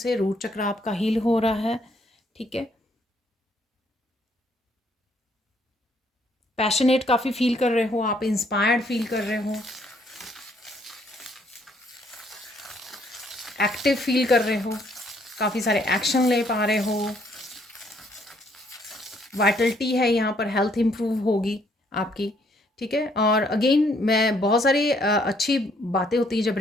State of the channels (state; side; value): normal; both; correlation 0.67